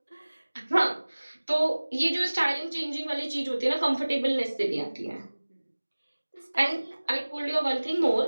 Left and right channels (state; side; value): inverted; both; correlation -1.00